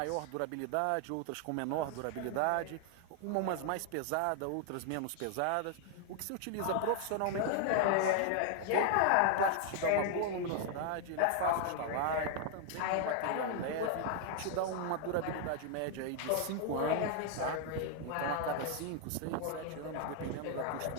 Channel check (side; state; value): both; different; correlation 0.00